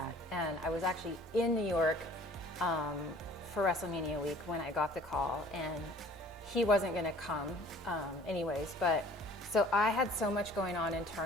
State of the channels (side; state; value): both; normal; correlation 0.51